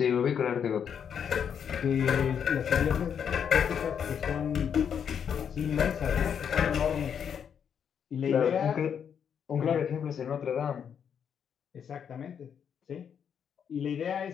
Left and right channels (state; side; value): quieter; right; 7.8 dB